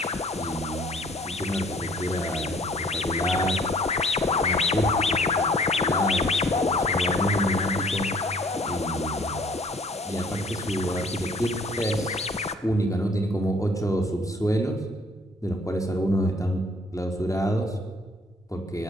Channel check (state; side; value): normal; both; correlation 0.57